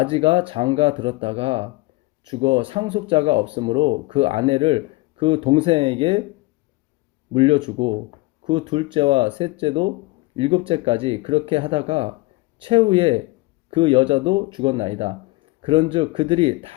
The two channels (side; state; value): right; quieter; 22.0 dB